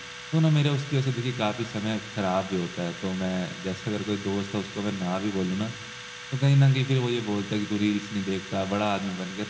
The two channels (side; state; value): both; identical; correlation 1.00